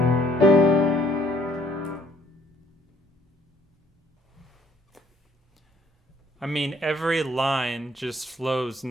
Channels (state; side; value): normal; both; correlation 0.61